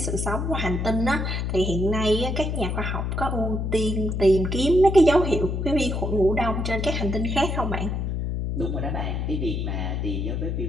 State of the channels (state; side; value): noise; left; hum, 1 dB below the sound